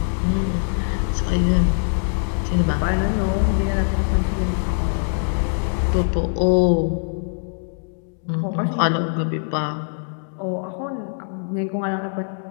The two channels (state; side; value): silent; right; digital silence